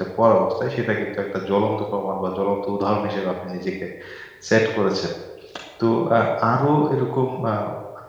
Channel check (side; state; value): both; identical; correlation 1.00